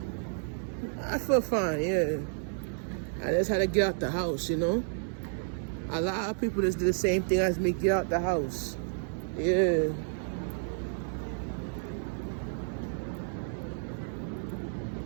I feel fine, yeah. I just had to get out the house, you know. A lot of people just do the same thing as me, get out the house. Yeah.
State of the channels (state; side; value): silent; left; 57 dB below the other